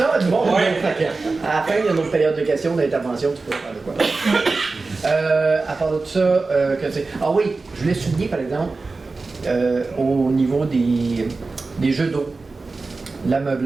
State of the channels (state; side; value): quieter; left; 3.8 dB